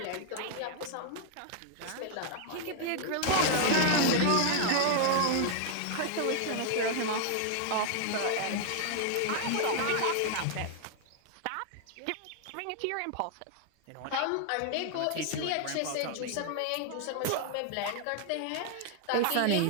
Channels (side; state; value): both; different; correlation 0.00